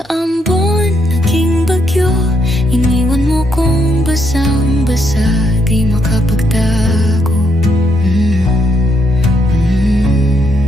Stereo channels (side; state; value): both; normal; correlation 0.76